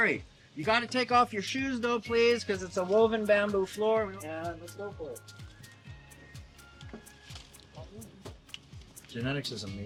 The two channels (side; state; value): both; identical; correlation 1.00